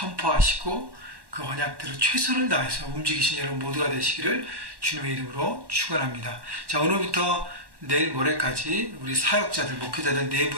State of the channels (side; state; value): left; late; 1.1 ms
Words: 그 언약대로 최선을 다해서 움직이신 여러분 모두가 되시기를 주님의 이름으로 축원합니다. 자, 오늘부터 내일 모레까지 우리 사역자들, 목회자들